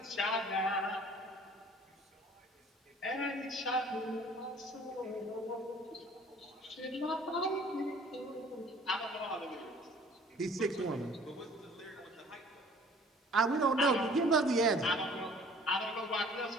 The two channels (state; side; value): normal; both; correlation 0.52